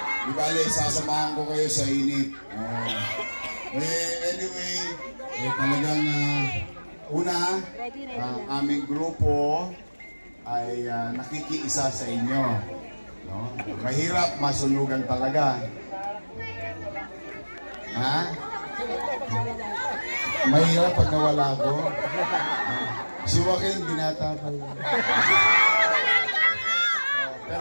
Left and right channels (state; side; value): inverted; both; correlation -1.00